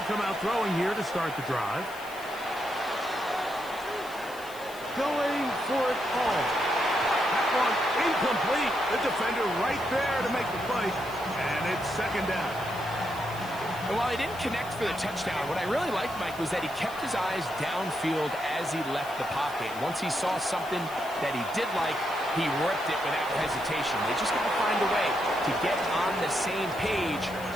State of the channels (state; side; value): noise; left; hiss, 18 dB below the sound